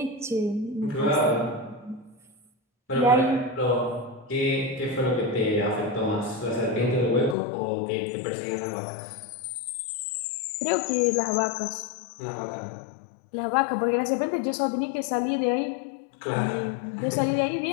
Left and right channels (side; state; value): right; drops out; at 7.4 s